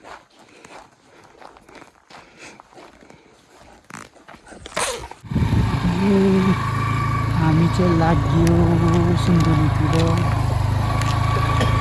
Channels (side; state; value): both; identical; correlation 1.00